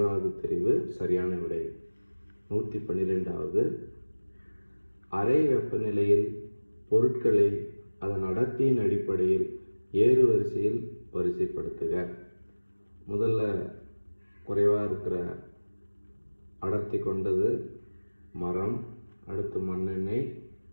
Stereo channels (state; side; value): inverted; both; correlation -1.00